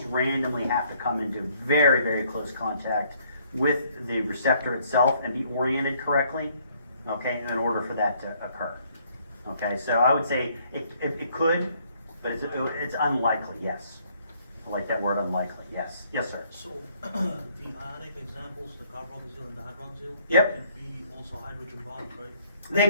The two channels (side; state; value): both; inverted; correlation -0.65